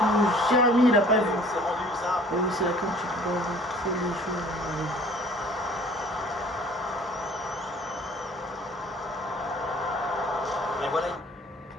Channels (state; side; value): normal; both; correlation 0.52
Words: Jérémy, il a pas vu. C'est rendu ça. Oh, oui, c'est là quand tu peux voir trop les choses. Mais voilà.